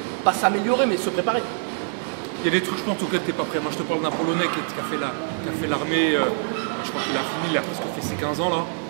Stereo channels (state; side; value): silent; left; digital silence